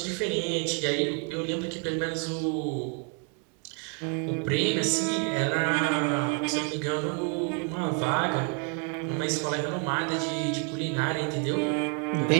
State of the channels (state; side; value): quieter; left; 38.0 dB